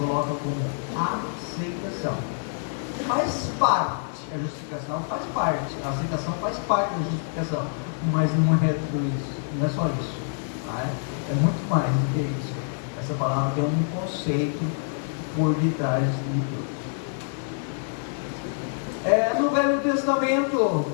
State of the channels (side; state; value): right; silent; 61 dB below the other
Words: como aceitação. Faz parte. A justificação faz parte. A aceitação faz parte da justificação. Mas não é tudo isso. Não é só isso. É muito mais do que isso. Essa palavra tem um conceito por detrás de tudo. No Velho Testamento,